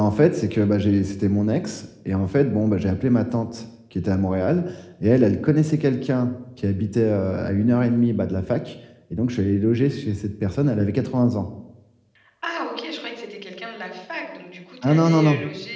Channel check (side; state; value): both; identical; correlation 1.00